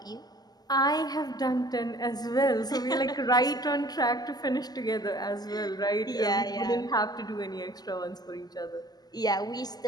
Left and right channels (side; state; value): right; late; 0.20 ms